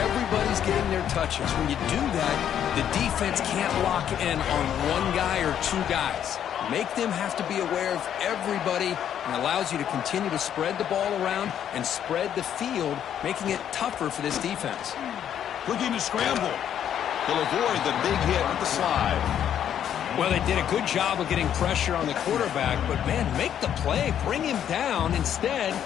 getting their touches. When you do that, the defense can't lock in on one guy or 2 guys. Make them have to be aware of everybody, and allows you to continue to spread the ball around and spread the field, making it tougher for this defense. Looking to scramble. He'll avoid the big hit with the slide. Well, they did a good job of getting pressure on the quarterback, but, man, make the play, bring him down. Instead,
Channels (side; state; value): right; quieter; 9.7 dB